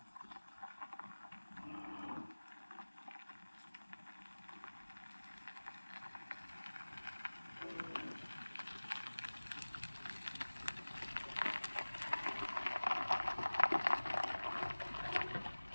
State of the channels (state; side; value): inverted; both; correlation -1.00